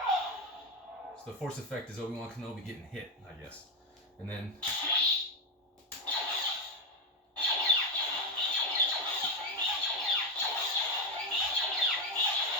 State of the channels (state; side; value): normal; both; correlation 0.08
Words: So the force effect is Obi-Wan Kenobi getting hit, I guess. And then